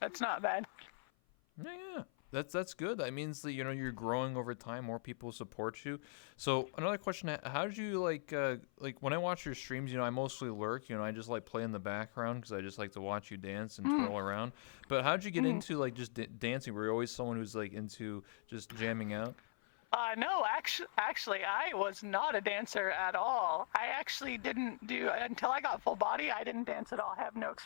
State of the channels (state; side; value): silent; right; 51 dB below the other